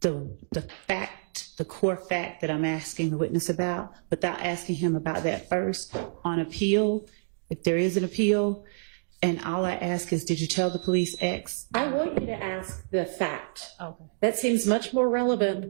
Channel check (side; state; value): left; silent; digital silence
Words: fact, the core fact that I'm asking the witness about, without asking him about that first on appeal, if there is an appeal, and all I ask is, did you tell the police X? I want you to ask the fact. Okay. That seems much more